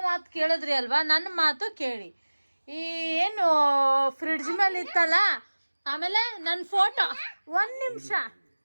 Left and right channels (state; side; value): inverted; both; correlation -1.00